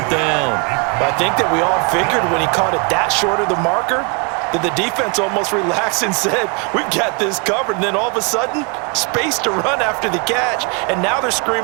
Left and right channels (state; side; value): quieter; left; 33.0 dB